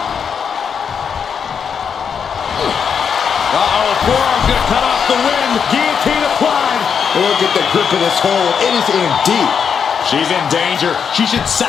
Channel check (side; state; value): right; quieter; 6.9 dB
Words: Uh-oh, forearm's going to cut off the wind. Guillotine applied. Look at the grip of this hold. It is in deep. She's in danger. She should